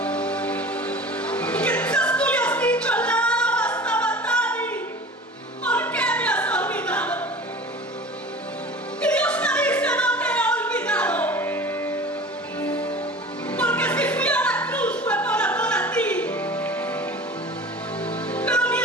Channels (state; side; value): normal; both; correlation 0.38